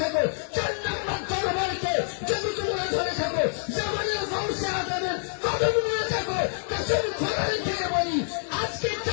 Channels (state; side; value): silent; right; 60 dB below the other